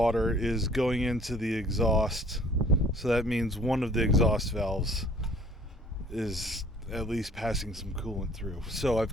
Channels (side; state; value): both; normal; correlation 0.55